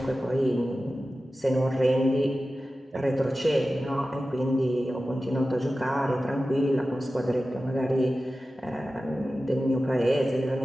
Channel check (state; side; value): normal; both; correlation 0.94